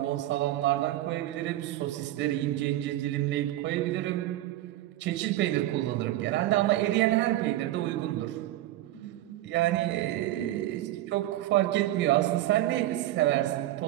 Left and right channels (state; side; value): quieter; left; 14.8 dB